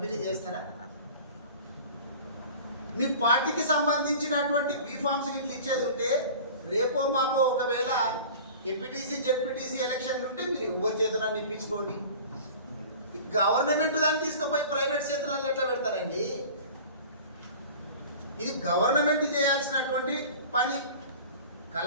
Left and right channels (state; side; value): inverted; both; correlation -0.41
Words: చేస్తారా? మీ పార్టీకి సంబంధించినటువంటి బీఫామ్స్ ఇట్లా ఇచ్చేది ఉంటే రేపో మాపో ఒకవేళ ఎంపీటీసీ జెడ్పీటీసీ ఎలక్షన్లు ఉంటే మీరు ఎవరి చేతులను ఇప్పించుకోండి. గవర్నమెంట్ దాన్ని తీసుకుపోయి ప్రైవేట్ చేతులలో ఎట్లా పెడతారండి? ఇది గవర్నమెంట్ చేయాల్సినటువంటి పని.